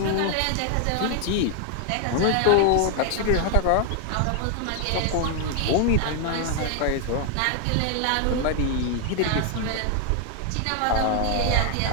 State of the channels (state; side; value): different; both; correlation 0.00